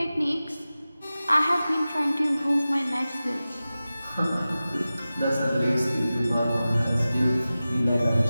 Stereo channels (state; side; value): inverted; both; correlation -0.96